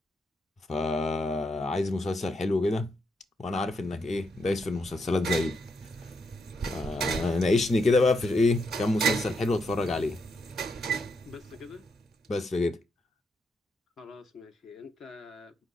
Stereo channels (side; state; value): both; normal; correlation 0.80